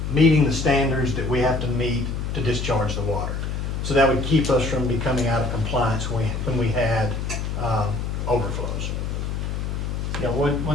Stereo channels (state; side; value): noise; left; hum, 3 dB below the sound